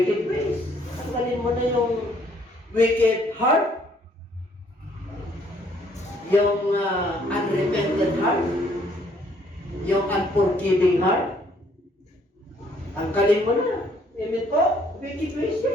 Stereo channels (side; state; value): both; normal; correlation 0.64